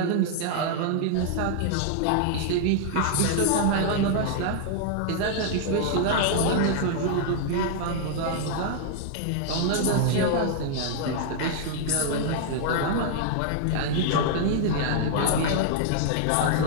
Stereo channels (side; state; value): both; different; correlation -0.01